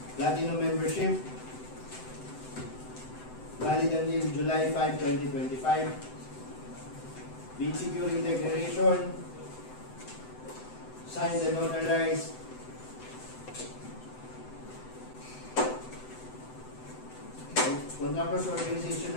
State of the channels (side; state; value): right; late; 7.9 ms